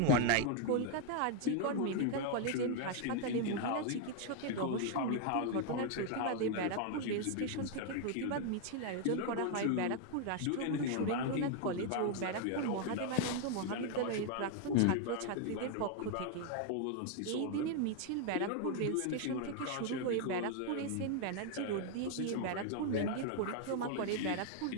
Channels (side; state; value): both; different; correlation 0.00